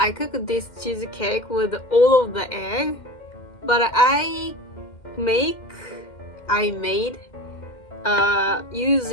cooked this cheesecake with all of the egg, but I made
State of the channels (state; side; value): late; right; 2.1 ms